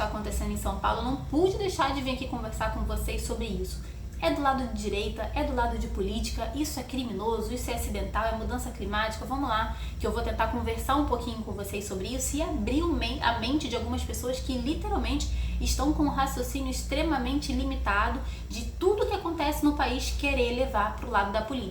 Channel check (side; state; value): both; identical; correlation 1.00